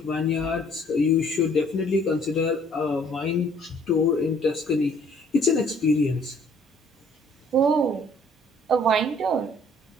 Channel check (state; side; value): normal; both; correlation 0.59